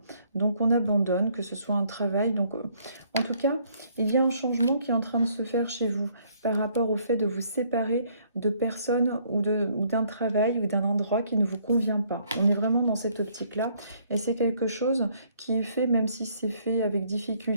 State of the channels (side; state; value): both; inverted; correlation -0.65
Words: Donc on abandonne, que ce soit un travail. Donc en tout cas, il y a un changement qui est en train de se faire chez vous par rapport au fait de vous séparer de personnes ou d'un travail ou d'un endroit qui ne vous convient pas. On est vraiment dans cette optique-là. Et c'est quelque chose qui est fait, même si c'est fait avec